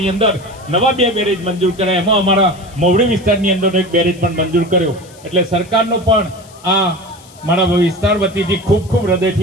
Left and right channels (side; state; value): left; noise; hiss, 24 dB below the sound